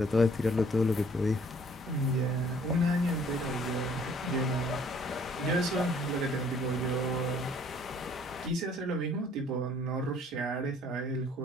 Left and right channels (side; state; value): both; normal; correlation 0.59